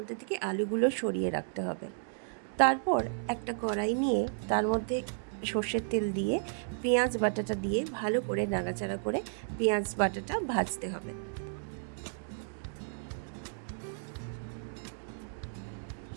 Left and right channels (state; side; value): silent; left; digital silence